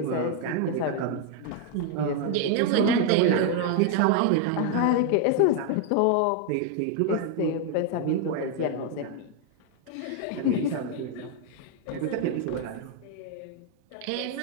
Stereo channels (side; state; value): both; different; correlation 0.00